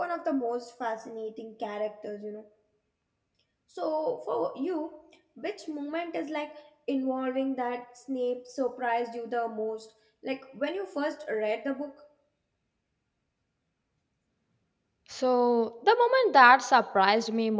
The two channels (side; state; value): both; identical; correlation 1.00